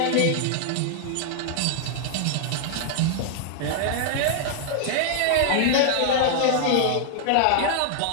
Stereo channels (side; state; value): both; different; correlation 0.00